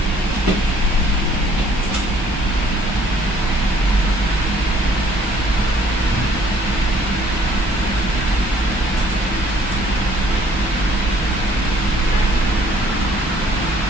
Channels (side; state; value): both; normal; correlation 0.60